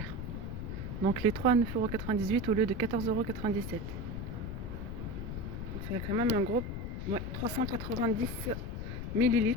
Donc les 3 à 9,98 € au lieu de 14,97 €. C'est quand même un gros 390 ml.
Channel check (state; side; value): noise; left; rumble, 5 dB below the sound